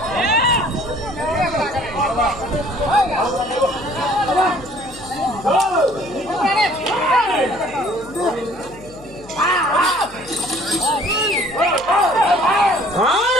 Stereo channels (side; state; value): left; noise; hum, 22 dB below the sound